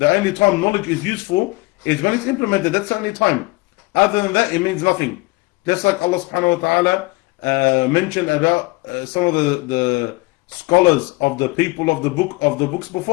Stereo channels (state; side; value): quieter; right; 23.7 dB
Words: only time knowledge is useful is when it's implemented. That's the only time. Other than that, it means nothing. Just like Allah subhanahu wa ta'ala mentioned about some of the scholars of the people of the books